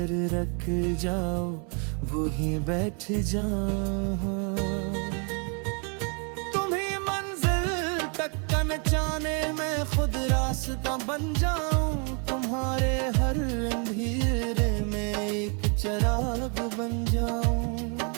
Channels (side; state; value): left; quieter; 37.6 dB